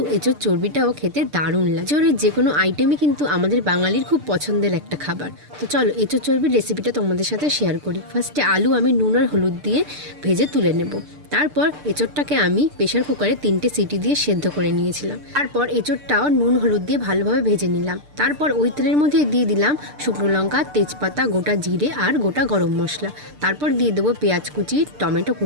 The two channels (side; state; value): left; late; 6.7 ms